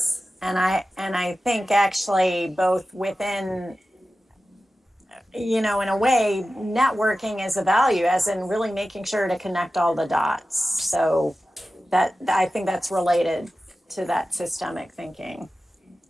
And I think actually both within, in a way, networking is a value, as in really making sure to connect all the dots. So that, I think that's related to that systemic thinking.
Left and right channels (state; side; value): normal; both; correlation 0.94